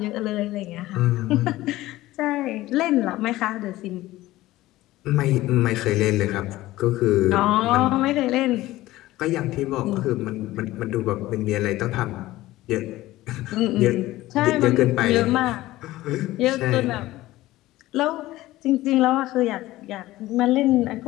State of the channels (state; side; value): quieter; right; 16.9 dB